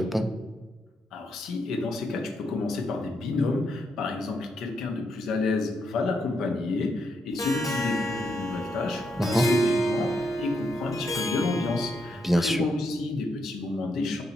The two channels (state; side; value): normal; both; correlation 0.79